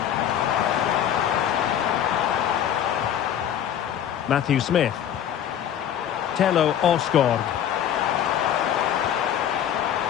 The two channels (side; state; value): right; quieter; 10.0 dB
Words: Matthew Smith. Tello Osgaard.